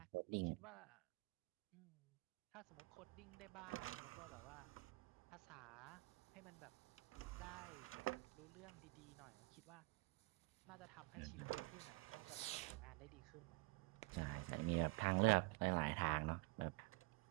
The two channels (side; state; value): left; quieter; 25.0 dB